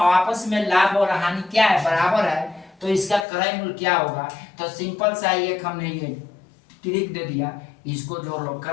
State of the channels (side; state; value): right; drops out; at 3.2 s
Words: में लाभ और हानि क्या है, बराबर है, तो इसका क्रय मूल्य क्या होगा। तो सिंपल सा एक हमने ये ट्रिक दे दिया, इसको जोड़ लो।